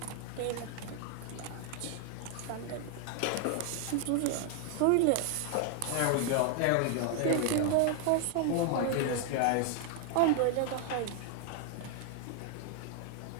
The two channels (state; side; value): different; both; correlation 0.00